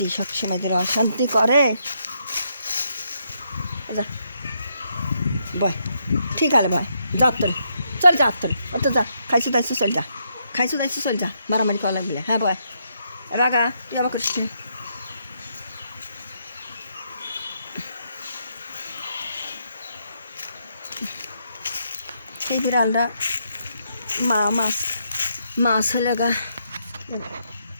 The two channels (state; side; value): inverted; both; correlation -0.77